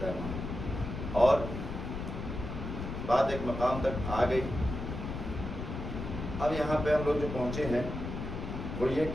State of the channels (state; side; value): noise; left; rumble, 6 dB below the sound